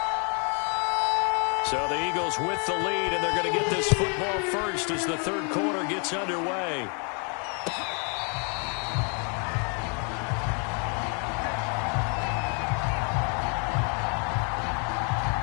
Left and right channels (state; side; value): quieter; right; 38.6 dB